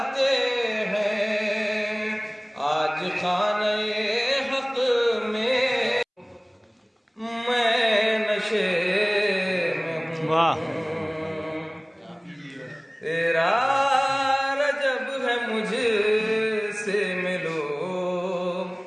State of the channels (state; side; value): identical; both; correlation 1.00